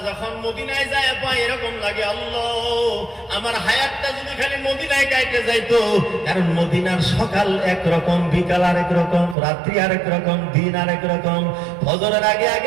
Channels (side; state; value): left; drops out; at 9.3 s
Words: যখন মদিনায় যায় পায় এরকম লাগে, আল্লাহ আমার হায়াতটা যদি খালি মদিনায় কাটে যাইতো। কারণ মদিনার সকাল একরকম, বিকাল আরেক রকম, রাত্রি আরেক রকম, দিন আরেক রকম। ফজরের আগে